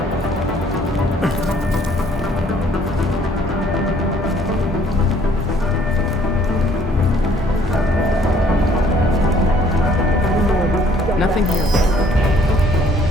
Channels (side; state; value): both; normal; correlation 0.61